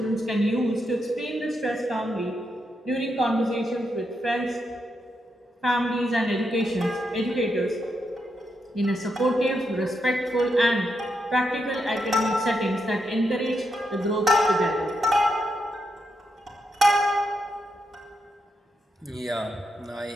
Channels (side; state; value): both; normal; correlation 0.83